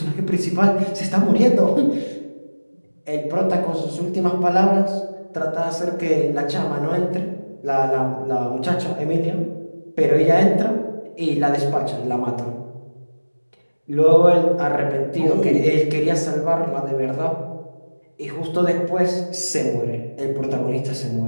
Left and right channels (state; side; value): inverted; both; correlation -1.00